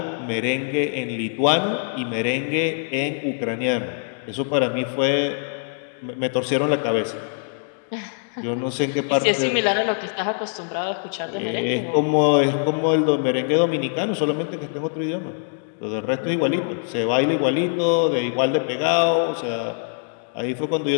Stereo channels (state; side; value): silent; right; digital silence